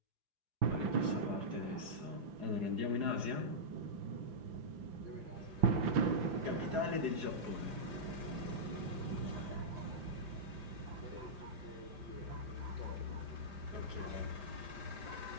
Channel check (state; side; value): late; left; 5.1 ms